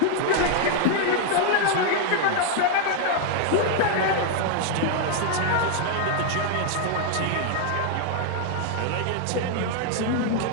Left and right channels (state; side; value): different; both; correlation 0.00